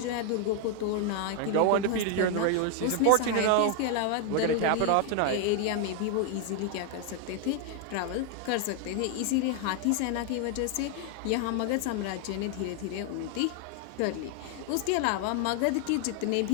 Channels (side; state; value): both; different; correlation 0.00